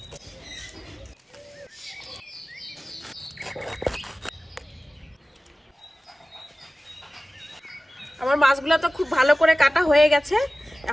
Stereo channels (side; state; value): both; normal; correlation 0.97